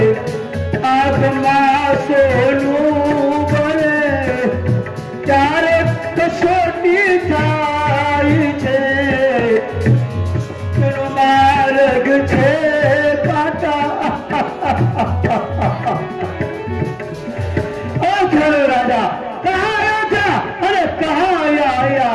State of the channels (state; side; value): identical; both; correlation 1.00